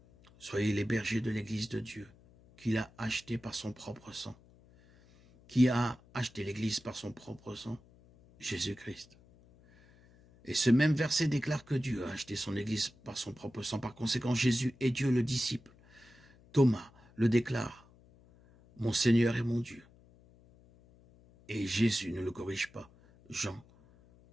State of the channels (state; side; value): noise; left; hum, 27 dB below the sound